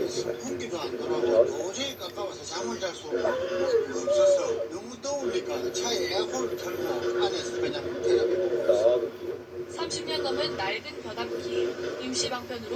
선풍기도 안 돌아오고 도저히 가까워서 잠을 잘 수 없어서 너무 더우니까 차에 에어컨을 틀고 안에서 그냥 텔레비전 보고 있어요. 30년 넘은 낡은 변압기, 임시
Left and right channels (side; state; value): both; identical; correlation 1.00